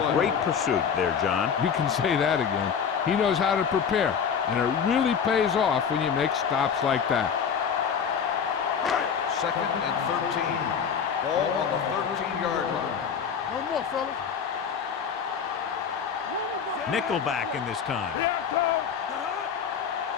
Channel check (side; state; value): right; quieter; 7.0 dB